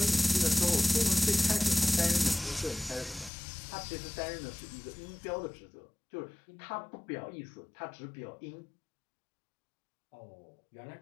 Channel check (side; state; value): right; drops out; at 3.3 s